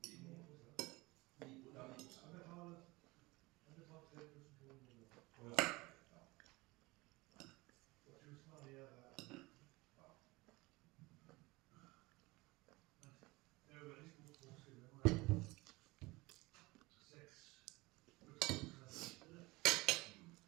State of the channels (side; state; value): left; quieter; 21.8 dB